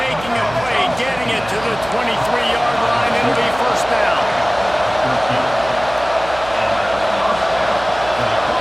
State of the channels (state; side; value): noise; right; hum, 15 dB below the sound